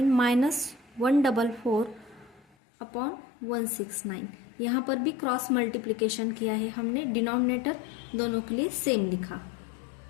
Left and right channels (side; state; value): right; drops out; at 2.5 s